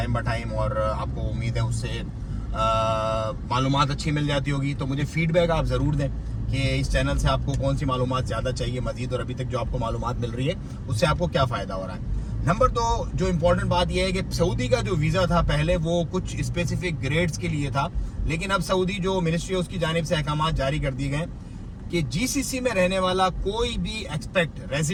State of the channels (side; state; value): both; identical; correlation 1.00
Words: बाय टाइम, और आपको उम्मीद है उससे मालूमात अच्छी मिल जाती होगी। तो मुझे फीडबैक आप ज़रूर दें कि इस चैनल से आपको कौन सी मालूमात ज़्यादा चाहिए मज़ीद, और अभी तक जो आपको मालूमात मिल रही है उससे आपको क्या फ़ायदा हो रहा है। नंबर 2 जो इम्पोर्टेंट बात यह है कि सऊदी का जो वीज़ा था पहले वो कुछ स्पेसिफिक ग्रेड्स के लिए था, लेकिन अब सऊदी जो मिनिस्ट्री है उसकी जानिब से अहकाम जारी कर दिए गए कि जीसीसी में रहने वाला कोई भी एक्सपेक्ट